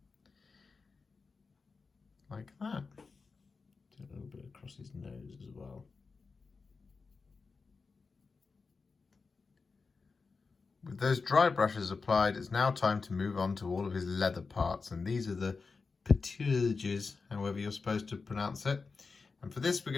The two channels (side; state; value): right; quieter; 4.5 dB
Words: like that. Do a little bit across his nose as well. With those dry brushes applied, it's now time to move on to all of his leather parts, and these are the paturages, however you're supposed to pronounce it. And for this, we're